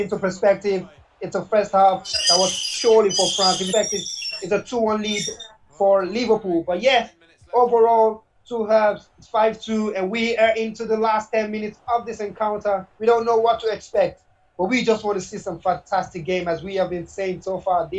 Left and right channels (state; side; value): identical; both; correlation 1.00